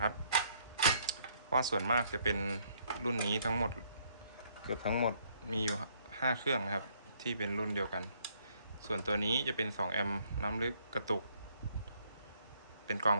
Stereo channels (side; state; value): both; inverted; correlation -0.67